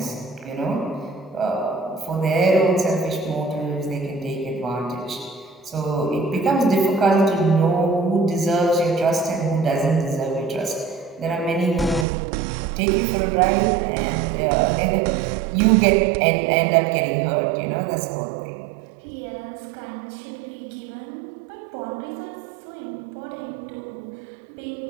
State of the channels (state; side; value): drops out; left; at 12.1 s